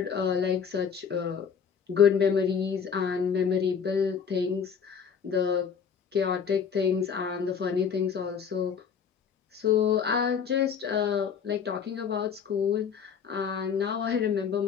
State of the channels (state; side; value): quieter; right; 6.9 dB